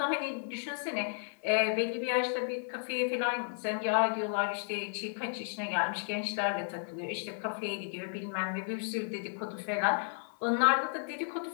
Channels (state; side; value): silent; right; 56 dB below the other